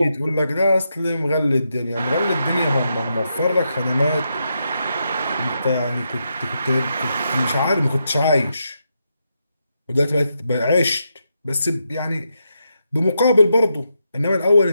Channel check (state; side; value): inverted; both; correlation -0.83